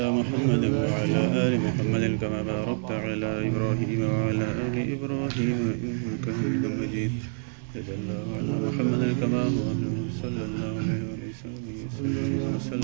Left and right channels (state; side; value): silent; left; 60 dB below the other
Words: मुहम्मद व अला आलि मुहम्मद कमा बारकता अला इब्राहीम व अला आलि इब्राहीम इन्नका हमीदुम मजीद। जल्लल्लाहु अला मुहम्मद कमा हुवा सल्लल्लाहु अलैहि वसल्लम व